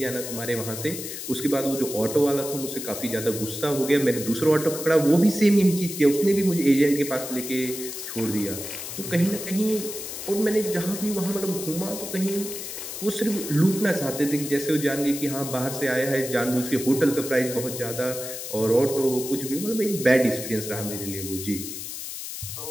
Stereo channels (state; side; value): noise; left; hiss, 8 dB below the sound